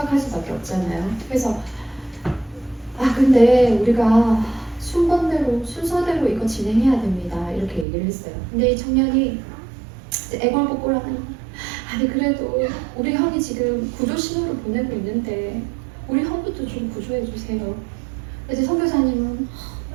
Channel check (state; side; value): drops out; left; at 7.9 s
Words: 수밖에 없잖아요. 그래서 근데 우리가 순서대로 이거 진행해야 됩니다. 이렇게 얘기를 했어요. 근데 이 청년이 애걸복걸하는 거예요. 아니 그래도 우리 형이 지금 구조 신호를 보내고 있는데 우리 형부터 좀 구조해 주세요. 이제 선교사님은